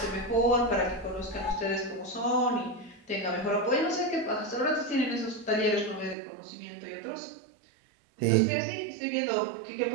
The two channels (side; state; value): left; drops out; at 6.2 s